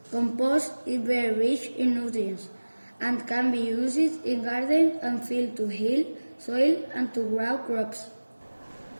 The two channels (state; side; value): inverted; both; correlation -1.00